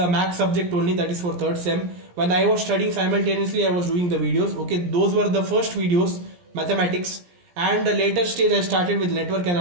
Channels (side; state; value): left; late; 17 ms